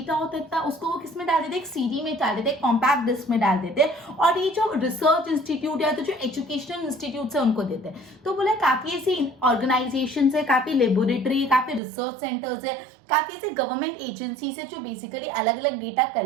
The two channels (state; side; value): drops out; left; at 11.8 s